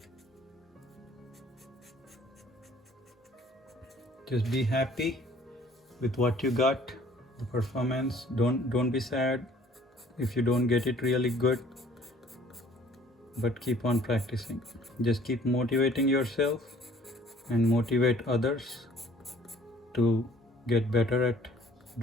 Just be happy with what you got, the performance. Don't be sad if you don't get it really good, but keep on practicing. Just keep motivating yourself and motivate others to get better at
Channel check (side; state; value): both; normal; correlation 0.56